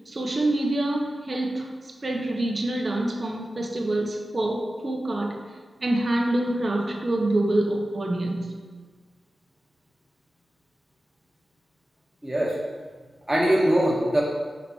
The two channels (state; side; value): normal; both; correlation 0.94